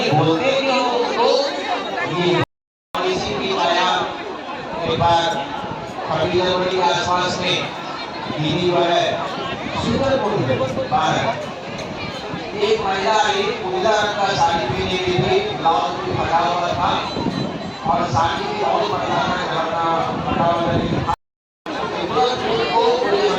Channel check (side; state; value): both; identical; correlation 1.00